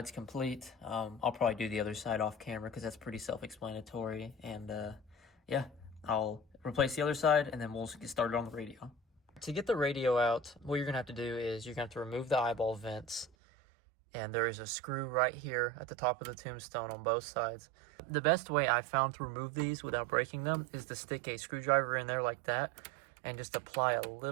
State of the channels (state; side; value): drops out; left; at 13.3 s